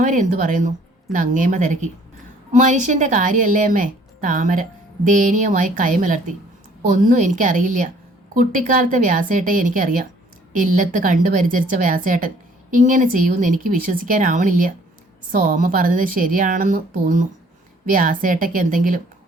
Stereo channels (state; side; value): normal; both; correlation 0.58